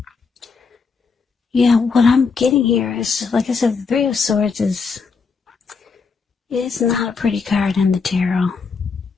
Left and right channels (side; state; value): right; quieter; 5.0 dB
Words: yeah, what I'm getting here is, like I said, the Three of Swords is not a pretty card in the tarot.